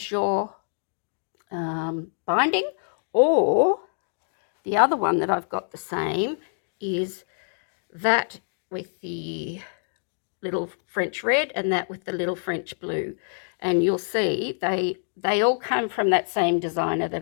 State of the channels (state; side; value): silent; right; digital silence